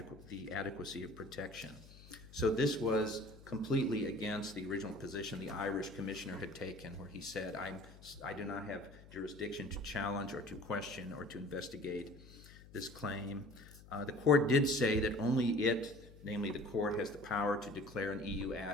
adequacy of protection. So this was completely against the original position the Irish commissioner had taken, where he said, I do not have jurisdiction to challenge or to question or to investigate this claim. The court did say that only it, namely the court, has the power to declare an EU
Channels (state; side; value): noise; left; hum, 19 dB below the sound